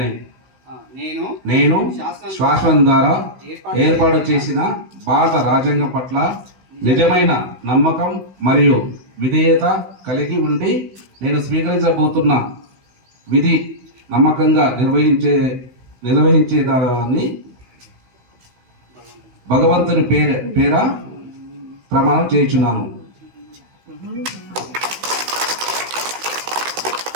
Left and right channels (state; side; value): late; left; 16 ms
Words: నేను శాసనం ద్వారా ఏర్పాటు చేసిన భారత రాజ్యాంగం పట్ల నిజమైన నమ్మకం మరియు విధేయత కలిగి ఉండి నేను స్వీకరించబోతున్న విధి నమ్మకంగా నిర్వహించేదాన్ని భగవంతుని పేర ప్రమాణం చేయించున్నాను.